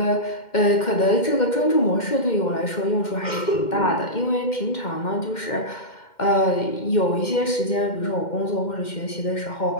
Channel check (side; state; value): right; late; 2.1 ms